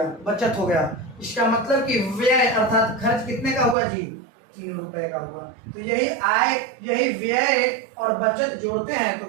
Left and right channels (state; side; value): drops out; left; at 3.8 s